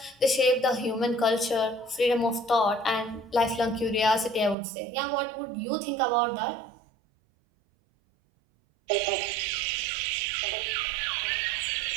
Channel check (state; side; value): drops out; left; at 4.5 s